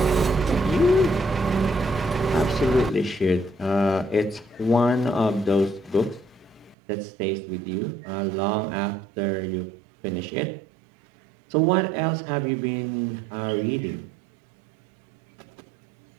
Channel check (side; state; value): left; drops out; at 6.8 s